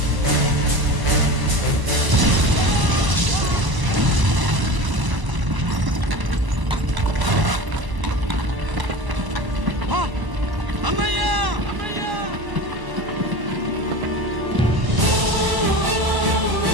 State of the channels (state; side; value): late; left; 1.0 ms